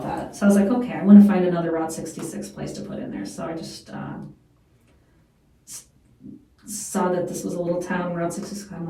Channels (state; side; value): identical; both; correlation 1.00